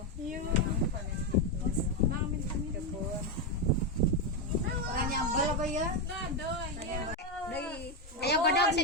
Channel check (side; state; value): both; normal; correlation 0.07